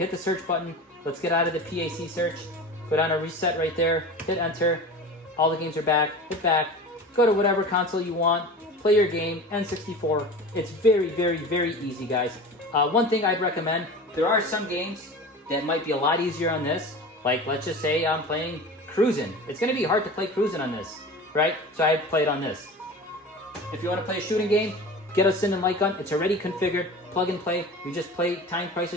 the search button. Let's get out of the PAC search. Go down to reset right there. Hit enter. All the games are back. Hit back. Go to whatever console you want. Play your game. N64. It's very, very, very easy, guys. One thing I'd recommend, there are some games that might be a lot easier on this. Like, let's just say I'm playing Cruisin'. It's going to be hard to play Cruisin' on this, right? So I play it on this. If you want to play a shooting game, get a Sin and Light Gun. It's already configured. Plug and play. You just play time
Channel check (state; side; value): normal; both; correlation 0.34